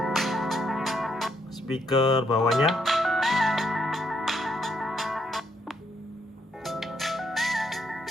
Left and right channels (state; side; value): normal; both; correlation 0.74